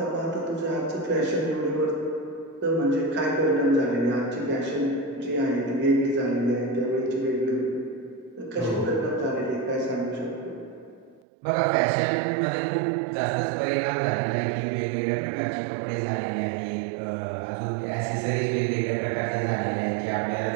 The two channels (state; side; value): drops out; left; at 11.2 s